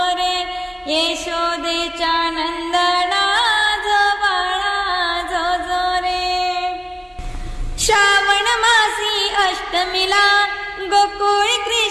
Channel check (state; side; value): identical; both; correlation 1.00